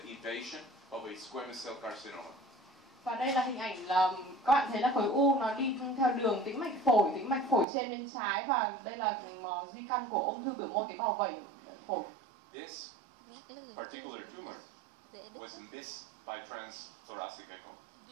invasion of a squamous cell carcinoma. Và đây là hình ảnh là các bạn thấy là khối u nó đi theo đường tĩnh mạch phổi trên bên trái, và đây là di căn của ung thư biểu mô tế bào vẩy phổi. This particular tumor was missed by transthoracic echo.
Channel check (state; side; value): drops out; left; at 7.7 s